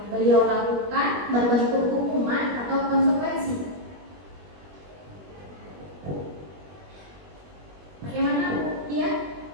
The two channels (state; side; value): late; left; 21 ms